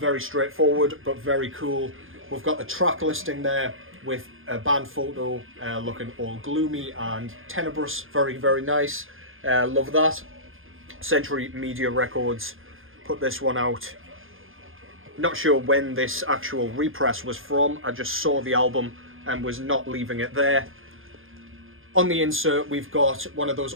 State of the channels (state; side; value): late; left; 0.59 ms